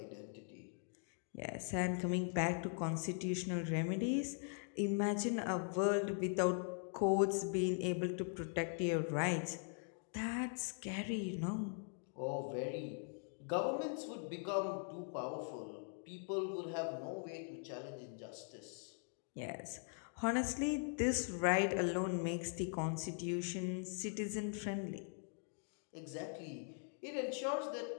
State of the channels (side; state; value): right; silent; 50 dB below the other